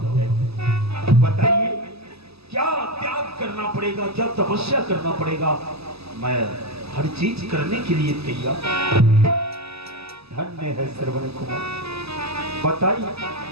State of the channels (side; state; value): left; late; 0.79 ms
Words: जाएगी। बताइए क्या त्याग करना पड़ेगा, क्या तपस्या करना पड़ेगा? मैं हर चीज करने के लिए तैयार। धन्य है श्रवण कुमार, बताइए।